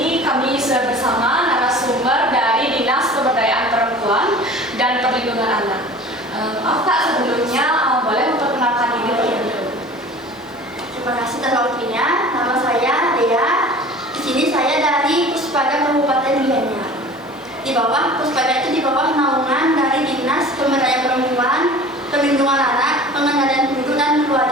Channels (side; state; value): both; normal; correlation 0.42